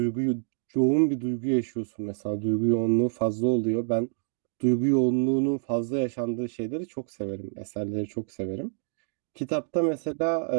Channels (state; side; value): silent; left; digital silence